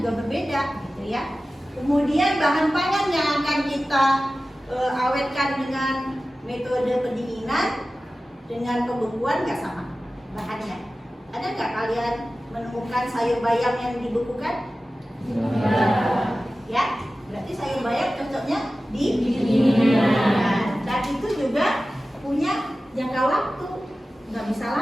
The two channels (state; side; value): normal; both; correlation 0.95